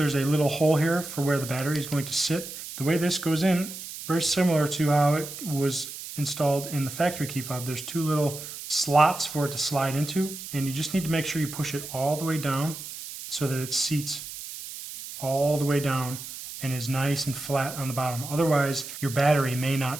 a little hole here for where the battery is going to sit. The way this goes in, very similar to how it was installed in the factory key fob. There's 2 little slots for it to slide into, and you just need to make sure you push it all the way down so that it seats all the way down and is nice and flat on the bottom. Otherwise, your battery may not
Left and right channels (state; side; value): noise; right; hiss, 10 dB below the sound